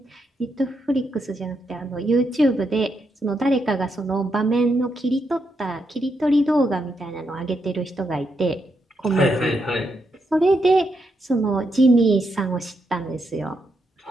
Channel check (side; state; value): both; normal; correlation 0.81